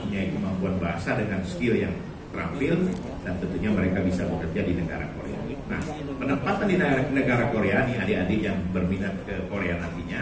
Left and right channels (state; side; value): identical; both; correlation 1.00